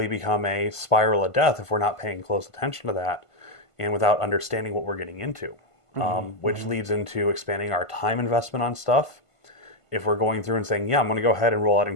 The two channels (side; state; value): right; late; 1.5 ms